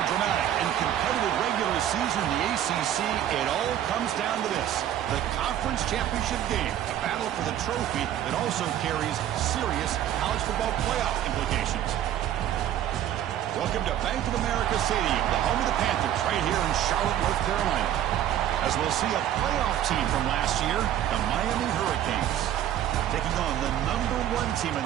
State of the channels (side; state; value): left; quieter; 11.4 dB